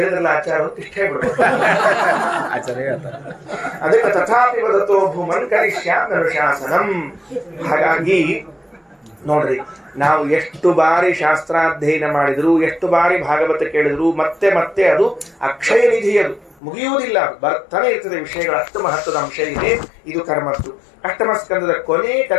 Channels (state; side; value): drops out; right; at 16.6 s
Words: ಆಚಾರ ಇಷ್ಟ ಹೇಳ್ಬಿಡ್ಬೇಕು. ಅದಕ್ಕೆ ತಥಾಪಿ ವದತೋ ಭೂಮನ್ ಕರಿಷ್ಯಾಮ್ಯನುಶಾಸನಂ. ಹಾಗಾಗಿ ನೋಡ್ರಿ, ನಾವು ಎಷ್ಟು ಬಾರಿ ಶಾಸ್ತ್ರಾಧ್ಯಯನ ಮಾಡಿದ್ರು, ಎಷ್ಟು ಬಾರಿ ಭಾಗವತ ಕೇಳಿದ್ರು, ಮತ್ತೆ ಮತ್ತೆ ಅದು ಅಕ್ಷಯ ನಿಧಿ, ಅದು ಮುಗಿಯುವುದಿಲ್ಲ, ಬರ್ತಾನೆ ಇರ್ತದೆ ವಿಷಯಗಳು. ಅಷ್ಟು ಮಹತ್ವದ ಅಂಶ ಇದೆ ಇದು ಕರ್ಮದ್ದು. ಅಷ್ಟಮ ಸ್ಕಂದದ ಕೊನೆ